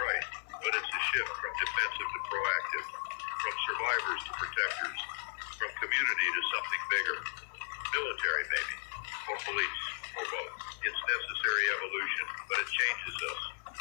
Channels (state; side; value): silent; right; 54 dB below the other